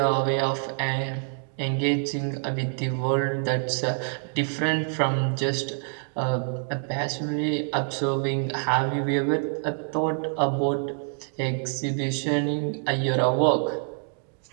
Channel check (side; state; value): left; silent; 61 dB below the other